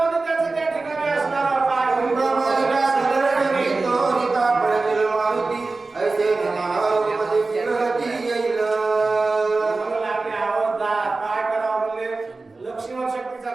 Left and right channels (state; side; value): quieter; left; 3.6 dB